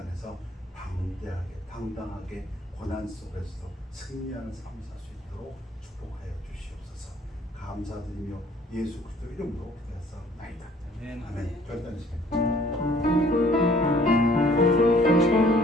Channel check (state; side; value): normal; both; correlation 0.58